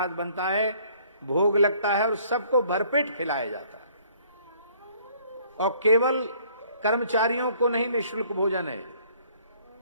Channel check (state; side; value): inverted; both; correlation -0.60